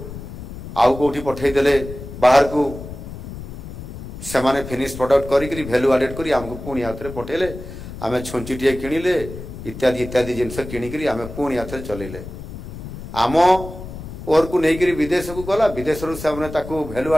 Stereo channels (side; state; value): left; noise; rumble, 11 dB below the sound